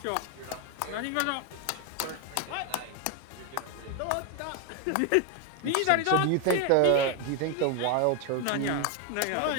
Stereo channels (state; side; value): different; both; correlation 0.01